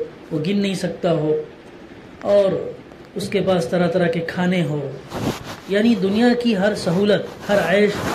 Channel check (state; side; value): identical; both; correlation 1.00